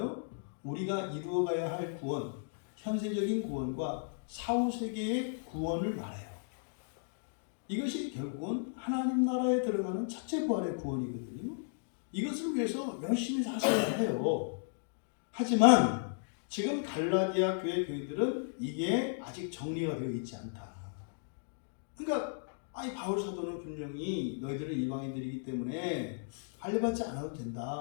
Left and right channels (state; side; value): silent; right; digital silence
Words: 우리가 이루어가야 할 구원, 현세적인 구원과 사후세계의 구원을 말해요. 이것이 결국은 하나님 나라에 들어가는 첫째 부활의 구원이거든요. 이것을 위해서 열심히 사셔야 해요. 하지만 지금 갈라디아 교회 교인들은 이게 아직 정리가 되어 있지 않다. 그러니까 바울 사도는 분명히 너희들은 이방인들이기 때문에 할례 받지 않아도